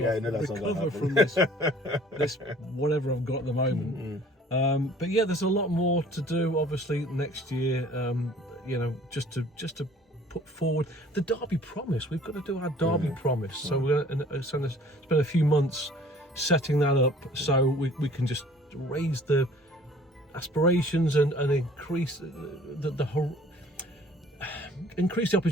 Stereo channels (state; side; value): normal; both; correlation 0.52